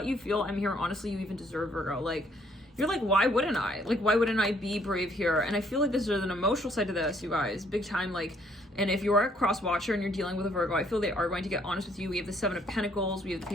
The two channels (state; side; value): normal; both; correlation 0.66